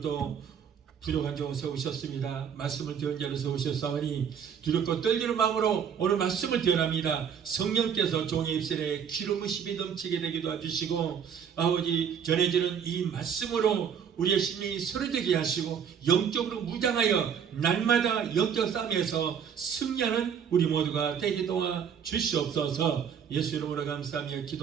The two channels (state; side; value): quieter; left; 7.7 dB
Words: 부족한 종 세우셨습니다. 말씀을 들은 자로 세우셨사오니 두렵고 떨리는 마음으로 오늘 말씀을 전합니다. 성령께서 종의 입술에 기름으심이 넘치게 되게 도와주시고 아버지 전해지는 이 말씀으로 우리의 심령이 서려지게 하시고 영적으로 무장하여 날마다 영적 싸움에서 승리하는 우리 모두가 되게 도와 주시옵소서. 예수 이름으로 감사하며